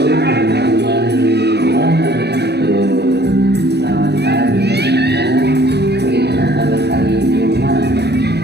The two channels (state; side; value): late; left; 0.48 ms